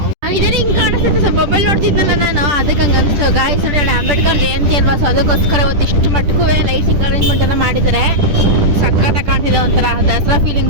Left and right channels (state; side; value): late; left; 10 ms